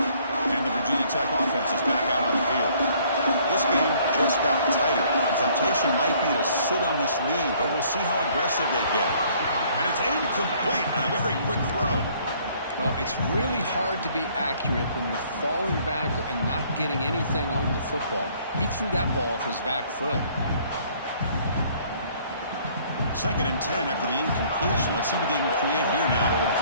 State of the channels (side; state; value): both; inverted; correlation -0.60